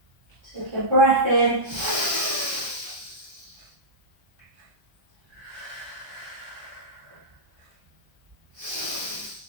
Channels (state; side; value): late; left; 1.2 ms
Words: Take a breath in.